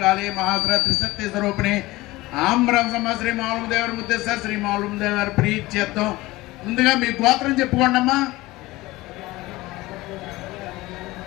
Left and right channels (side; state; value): right; quieter; 19.6 dB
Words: మహాసుర త్రిశక్తి స్వరూపిణి ఆమ్రం సమ శ్రీ మావులదేవర ముద్దేశ్వర శ్రీ మావులదేవర ప్రీత్యర్థం. ముందుగా మీ గోత్రం చెప్పుకోండి అమ్మా.